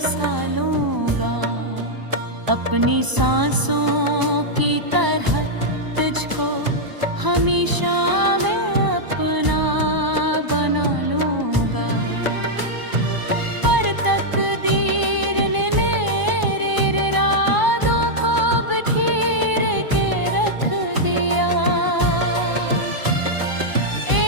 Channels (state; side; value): late; left; 1.0 ms